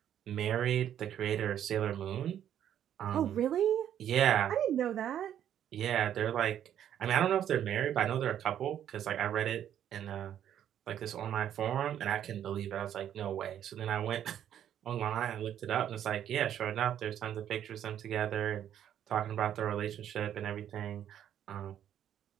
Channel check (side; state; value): left; quieter; 10.2 dB